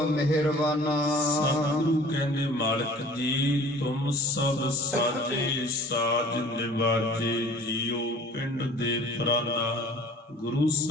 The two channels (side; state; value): both; normal; correlation 0.48